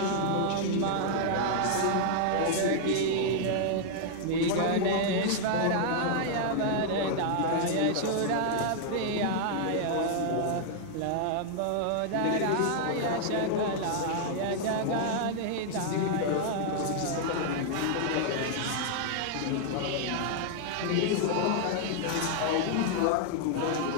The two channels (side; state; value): both; different; correlation -0.01